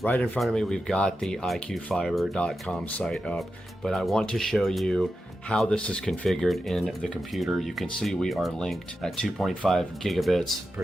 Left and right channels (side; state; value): both; normal; correlation 0.90